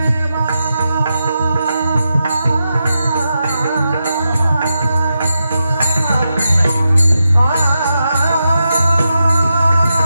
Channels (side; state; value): both; inverted; correlation -0.87